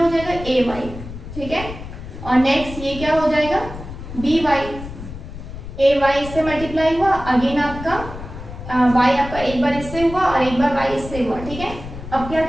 जाएगा ay, ठीक है, और नेक्स्ट ये क्या हो जाएगा by, ay इससे मल्टीप्लाई हुआ, अगेन आपका y आपका एक बार इससे हुआ और एक बार y इससे हुआ, ठीक है। अब क्या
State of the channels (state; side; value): noise; left; rumble, 11 dB below the sound